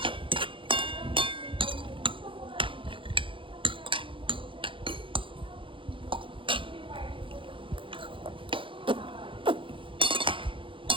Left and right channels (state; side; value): late; left; 0.25 ms